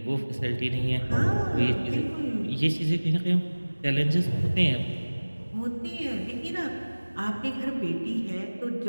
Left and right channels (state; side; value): inverted; both; correlation -1.00